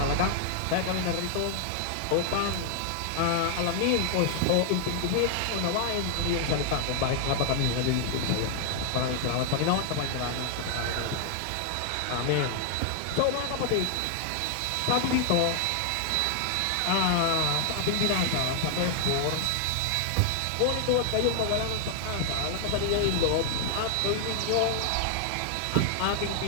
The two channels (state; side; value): different; both; correlation 0.00